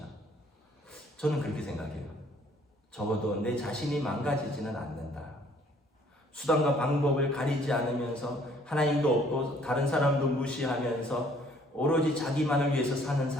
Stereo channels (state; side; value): normal; both; correlation 0.60